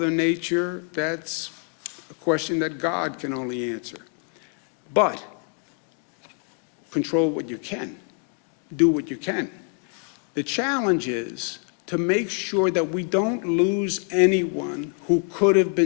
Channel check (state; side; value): quieter; right; 38.9 dB